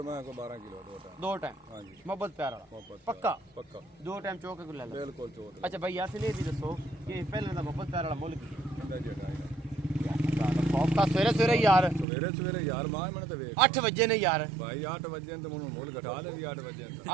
मैं को 12 किलो 2 टाइम। हाँ जी, मोहब्बत प्यार वाला मोहब्बत पक्का पक्का 2 टाइम चौक के ले लो। बिल्कुल चोट। अच्छा भाई यासीन ये भी दसो कि पहले दा मोहब्बत प्यार वाला मुल्क की इंदा जी हटाएगा खौफ का सवेरे सवेरे यार सवेरे यार मार मैंने तो वेख 8 बजे ने यार भाई 8 बजे तो मुझे मोल घटा दे 8 बजे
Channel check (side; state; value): left; drops out; at 12.1 s